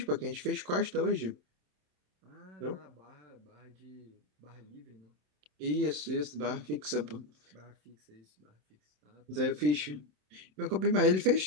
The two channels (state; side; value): late; left; 27 ms